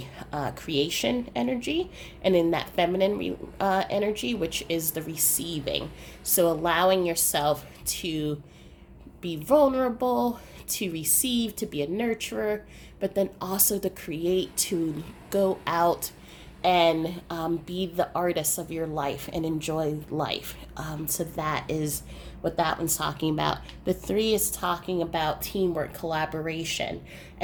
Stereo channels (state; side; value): identical; both; correlation 1.00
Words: creation energy, and in that feminine energy, which is the receiving. So allowing yourself to be vulnerable, to receive, to be a nurturer, but then also to create, to go out and be the artist of your life and enjoy life. So that is what that one's talking about. The 3 is talking about teamwork, collaboration.